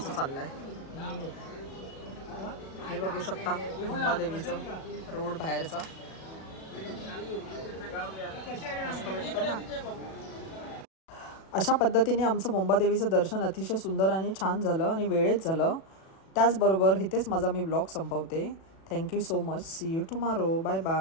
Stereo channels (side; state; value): right; late; 37 ms